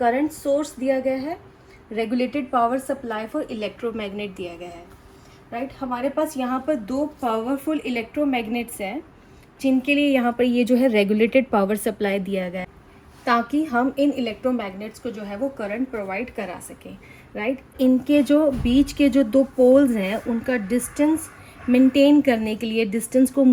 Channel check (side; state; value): both; identical; correlation 1.00